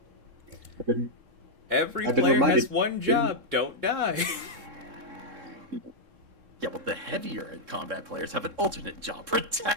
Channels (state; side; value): late; left; 3.7 ms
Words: I've been- Every I've been player reminded- has one job. Don't die. Yeah, well, the heavier in combat players have an alternate job.